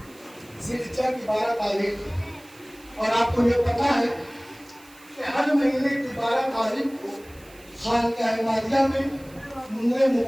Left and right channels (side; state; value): right; noise; hiss, 25 dB below the sound